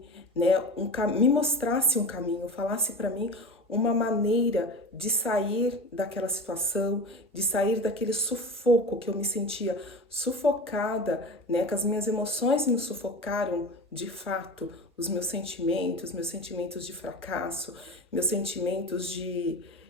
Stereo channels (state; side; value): normal; both; correlation 0.31